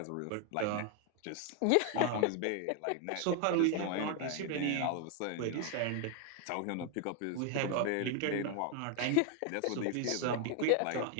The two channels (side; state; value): both; different; correlation 0.01